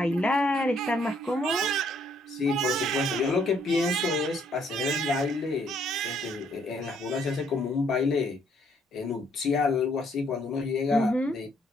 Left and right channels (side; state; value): both; normal; correlation 0.67